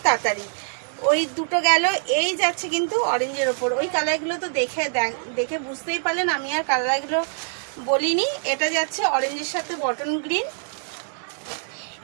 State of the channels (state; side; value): silent; left; 59 dB below the other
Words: তাড়াতাড়ি। ওই দুটো গেল, এই যাচ্ছে কিন্তু অরেঞ্জের ওপর। ওই কালারগুলো তো দেখে বুঝতেই পারলেন, আমি আর কালারগুলো বলিনি। এটা যাচ্ছে অরেঞ্জের সাথে বটন গ্রিন,